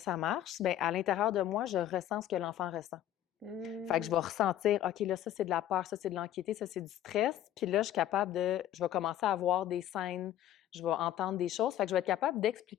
marche. Ben, à l'intérieur de moi, je ressens ce que l'enfant ressent. Fait que je vais ressentir, OK, là, ça, c'est de la peur, ça, c'est de l'anxiété, ça, c'est du stress. Puis là, je vais commencer à voir des scènes, je vais entendre des choses. Fait que je vais être capable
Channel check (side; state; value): right; quieter; 12.0 dB